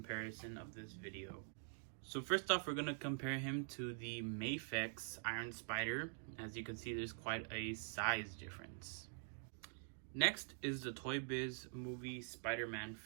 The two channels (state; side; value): silent; left; digital silence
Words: of this video. So first off, we're gonna compare him to the Mafex Iron Spider. As you can see, there's quite a size difference. Next is the Toy Biz movie Spider-Man